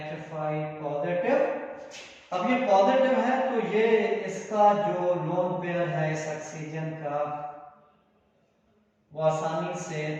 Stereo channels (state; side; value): identical; both; correlation 1.00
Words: positive. अब ये पॉजिटिव है तो ये इसका जो लोन पेयर है इस ऑक्सीजन का, वो आसानी से